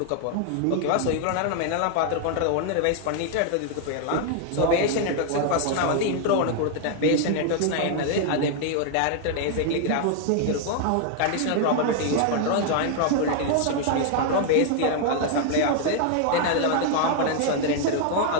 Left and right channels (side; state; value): both; different; correlation 0.00